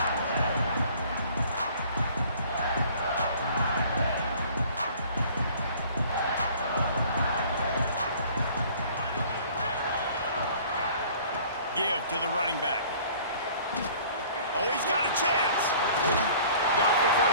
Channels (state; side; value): inverted; both; correlation -0.51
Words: Give to the running back. Oh, he's got a chance. Got the